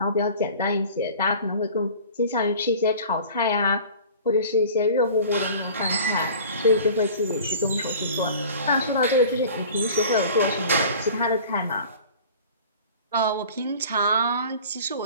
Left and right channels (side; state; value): both; inverted; correlation -0.44